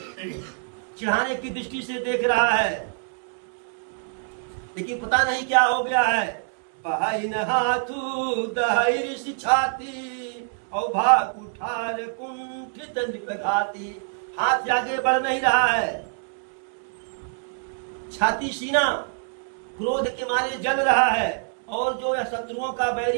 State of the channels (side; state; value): left; silent; 61 dB below the other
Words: चिढ़ाने की दृष्टि से देख रहा है। लेकिन पता नहीं क्या हो गया है। बहाइन हाथू दहाई छाती और भाग उठार कुंठित निपघाती। हाथ से आगे बढ़ नहीं रहा है, छाती सीना क्रोध के मारे जल रहा है। और जो यह शत्रुओं का